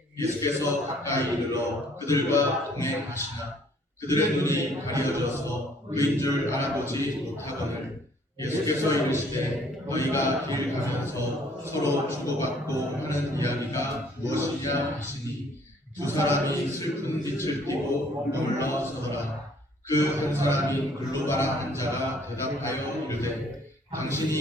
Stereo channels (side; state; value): both; normal; correlation 0.60